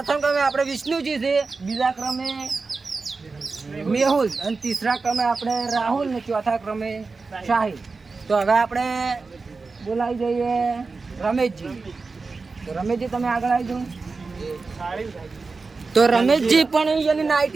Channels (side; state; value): left; quieter; 4.2 dB